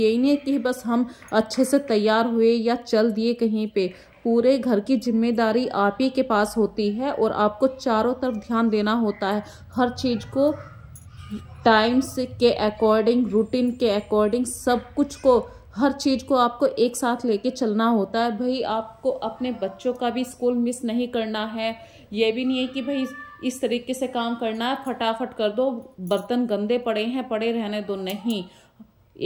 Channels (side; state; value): both; identical; correlation 1.00